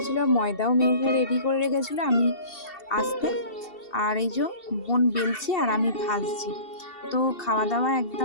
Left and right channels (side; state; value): right; late; 2.7 ms